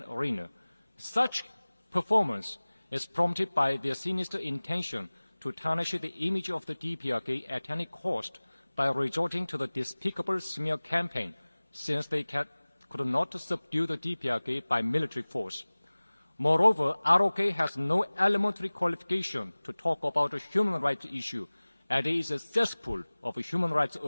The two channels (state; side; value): inverted; both; correlation -1.00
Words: arena. Such performance is prompted by their sinister intention to tarnish the image of the DPRK at any cost by resorting to the despicable smear campaign, since they could not subdue the DPRK by military force. Moreover, ROK has no elementary qualification to talk about a human rights issue, and it is a cesspool of human rights